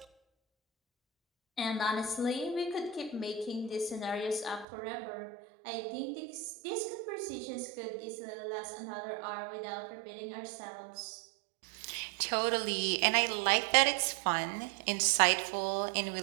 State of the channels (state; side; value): drops out; left; at 4.7 s